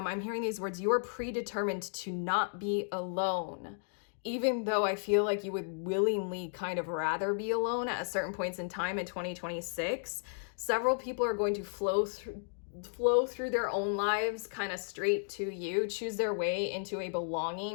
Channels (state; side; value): silent; right; digital silence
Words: hearing these words, you are predetermined to not be alone. Even though I feel like you would willingly kind of rather be alone at certain points in time in 2026, several people are going to flow through their own lives kind of straight to you, choose their way into a